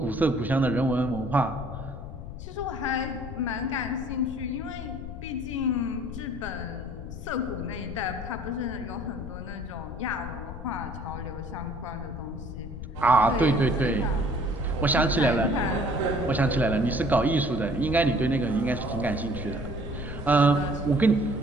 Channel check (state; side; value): noise; left; rumble, 10 dB below the sound